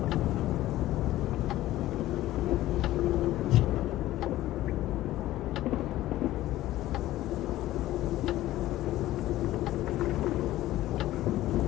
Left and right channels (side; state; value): right; quieter; 15.3 dB